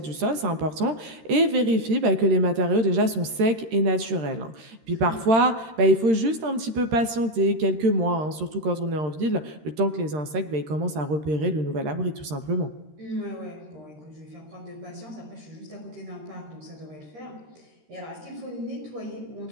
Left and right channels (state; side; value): late; left; 13 ms